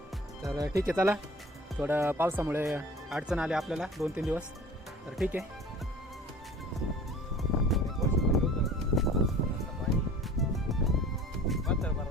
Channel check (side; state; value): both; normal; correlation 0.44